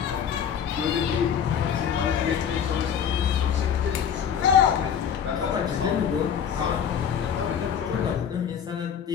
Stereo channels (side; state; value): right; quieter; 8.1 dB